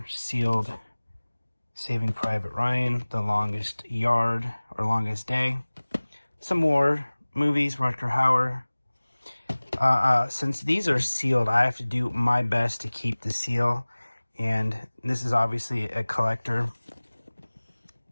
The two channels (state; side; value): inverted; both; correlation -1.00